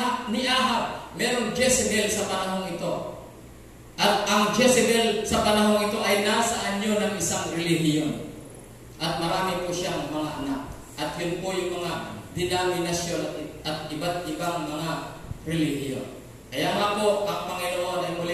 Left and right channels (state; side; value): identical; both; correlation 1.00